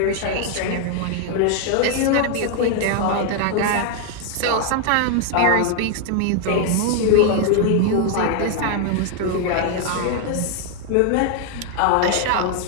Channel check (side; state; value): both; different; correlation 0.00